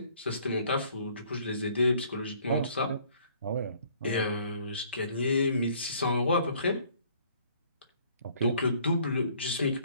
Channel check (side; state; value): both; inverted; correlation -0.59